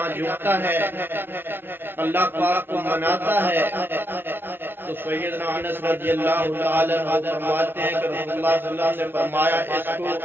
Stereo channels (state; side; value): late; left; 0.10 ms